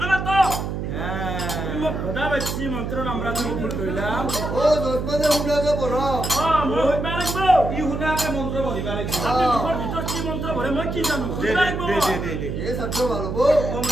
না তো হ্যাঁ মই ভদা বেছি মন্ত্র নামরা তুমি ভুল কইলাম ও দশমনে হুনাকে পড় মই হইবা লাগব ই শুনাকে মন্ত্ৰ পঢ়িবা লাগিব আপনি মুখৰ ভিতৰত কি মন্ত্র পঢ়ে মই কি জানো দে হইবা লাগব দে এ সত্য ভালো বো ওম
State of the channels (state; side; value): noise; right; hum, 4 dB below the sound